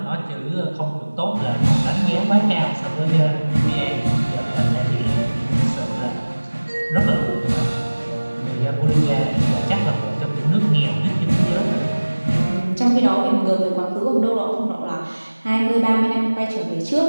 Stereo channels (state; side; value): inverted; both; correlation -1.00